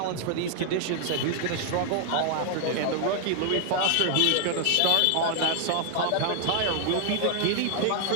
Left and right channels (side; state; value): both; different; correlation 0.00